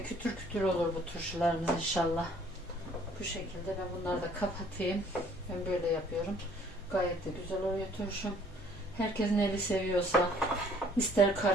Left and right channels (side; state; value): both; normal; correlation 0.59